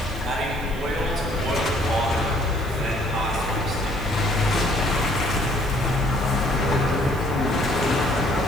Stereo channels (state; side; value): noise; right; hiss, 20 dB below the sound